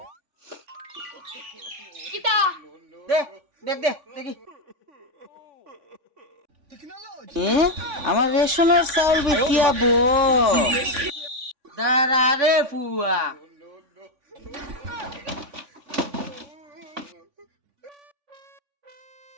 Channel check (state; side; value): late; left; 3.5 ms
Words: কিতা দে দেখ দে দেখি আমার রেশনের চাউল বিকিয়াবো দাঁড়া রে ফুয়া